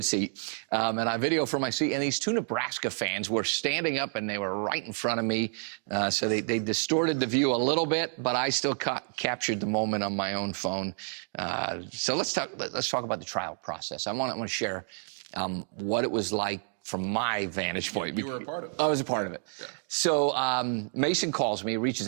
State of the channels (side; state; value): left; silent; 58 dB below the other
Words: seat. And I videoed from my seat. And these two Nebraska fans were standing up, and they were right in front of me. So they distorted the view a little bit, but I still captured the moment on my own phone. So let's talk about the trial process. I want to share what it was like from my vantage point. You were a part of it. I was a part of it. Yeah. So Mason calls me,